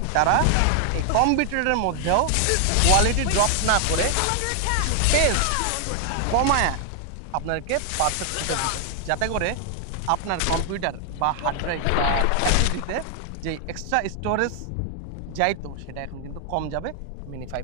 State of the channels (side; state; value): both; different; correlation 0.00